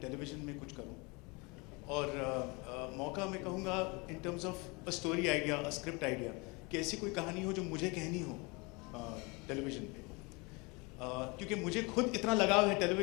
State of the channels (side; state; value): right; quieter; 27.9 dB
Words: टेलीविज़न में कुछ करूं। और मौका मैं कहूँगा in terms of a story idea, a script idea, कि ऐसी कोई कहानी हो जो मुझे कहनी हो टेलीविज़न पे, क्योंकि मुझे खुद इतना लगाव है